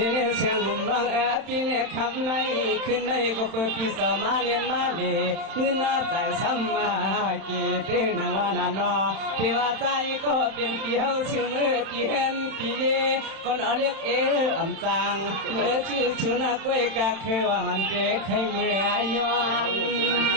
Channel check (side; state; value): left; late; 31 ms